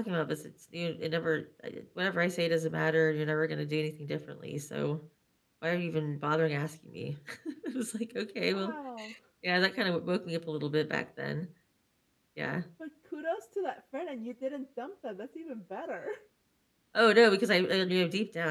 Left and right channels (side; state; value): both; identical; correlation 1.00